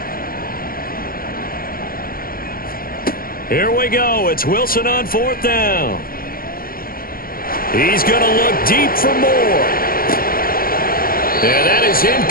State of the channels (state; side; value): late; right; 0.42 ms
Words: Here we go. It's Wilson on 4th down. He's going to look deep for more. And that is